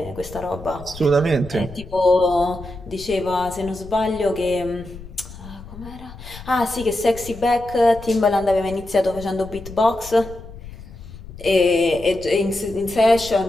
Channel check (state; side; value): noise; left; rumble, 15 dB below the sound